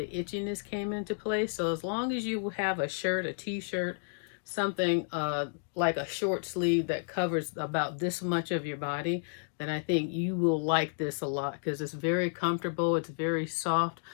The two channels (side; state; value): right; silent; digital silence